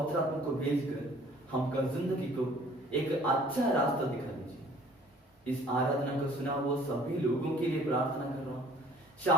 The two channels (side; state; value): both; normal; correlation 0.54